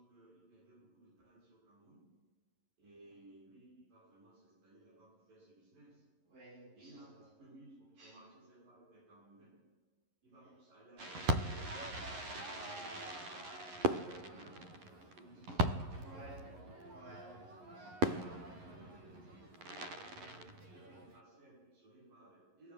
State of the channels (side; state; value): left; late; 11 ms